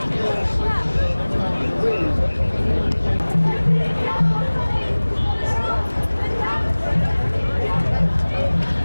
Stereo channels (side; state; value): both; inverted; correlation -1.00